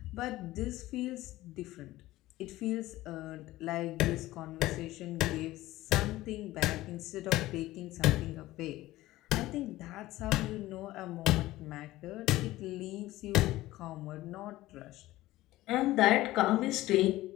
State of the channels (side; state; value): right; quieter; 16.9 dB